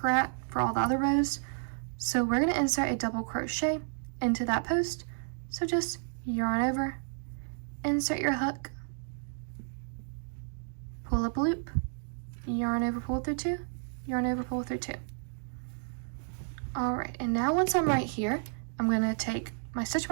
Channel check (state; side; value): silent; left; digital silence